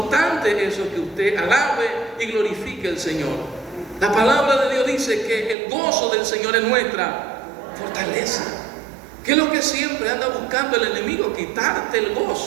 eso, que usted alabe y glorifique al Señor. La palabra de Dios dice que el gozo del Señor es nuestra fortaleza. ¿Qué es lo que siempre anda buscando el enemigo? Quitarte el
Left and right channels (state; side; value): drops out; left; at 5.6 s